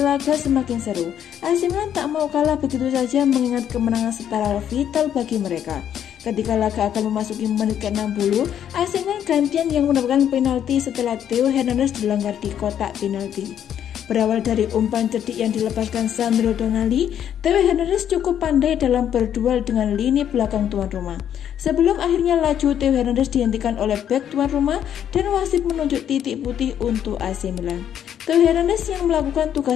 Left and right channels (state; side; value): quieter; right; 9.7 dB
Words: semakin seru. AC Milan tak mau kalah begitu saja mengingat kemenangan setara vital bagi mereka. Ketika laga akan memasuki menit ke-60, AC Milan gantian yang mendapatkan penalti setelah Theo Hernandez dilanggar di kotak penalti. Berawal dari umpan cerdik yang dilepaskan Sandro Tonali, Theo Hernandez cukup pandai dalam berduel dengan lini belakang tuan rumah. Sebelum akhirnya laju Theo Hernandez dihentikan oleh bek tuan rumah dan wasit menunjuk titik putih untuk AC Milan. Theo Hernandez yang melakukan